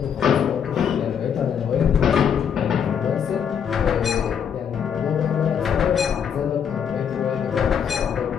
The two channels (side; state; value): right; quieter; 7.8 dB